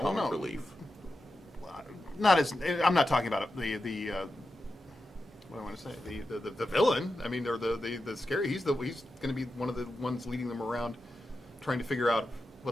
comic no. relief. Not as I'm not talking about the what I want to say the villain. I mean, or the scary. He's going to be one of the ones leading them around, trying to figure out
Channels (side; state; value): both; normal; correlation 0.90